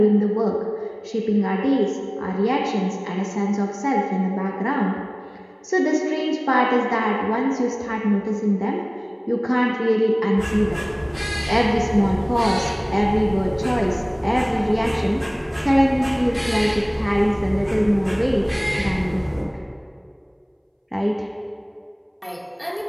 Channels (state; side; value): identical; both; correlation 1.00